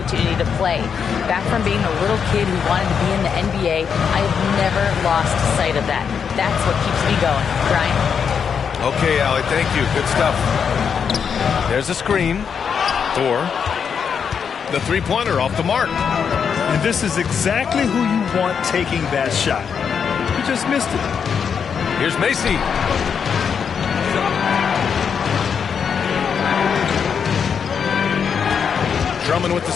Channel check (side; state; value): right; quieter; 6.9 dB